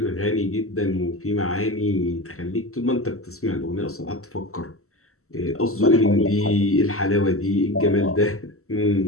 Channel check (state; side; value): late; right; 0.63 ms